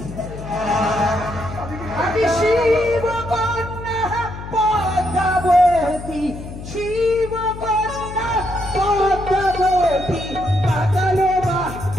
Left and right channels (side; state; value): left; noise; hum, 11 dB below the sound